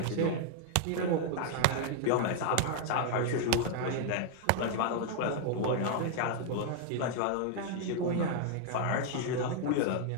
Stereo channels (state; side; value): different; both; correlation 0.00